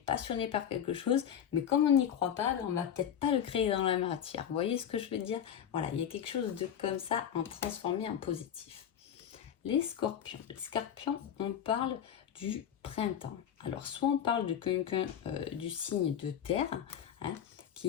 par quelque chose, mais comme on n'y croit pas, on va peut-être pas le créer dans la matière. Vous voyez ce que je veux dire? Voilà, il y a quelque chose de comme ça, en transformer en positif. Les scorpions. Les scorpions, on parle du printemps. Alors, soit on parle de quelqu'un du signe de terre, hein,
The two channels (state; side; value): quieter; right; 9.1 dB